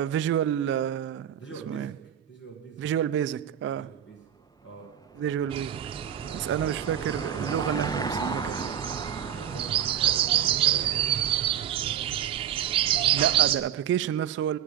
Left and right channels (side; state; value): left; quieter; 10.1 dB